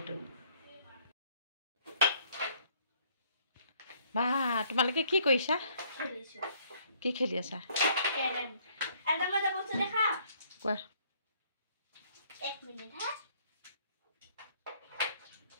বা তোমালোকে কি কৰিছা? কি খেলি আছা? কোৱা। एक मिनट है।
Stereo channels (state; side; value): inverted; both; correlation -0.63